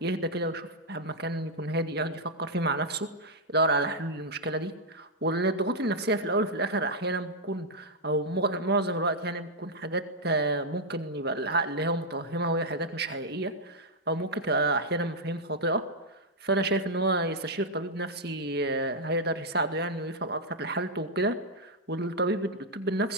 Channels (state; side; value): normal; both; correlation -0.04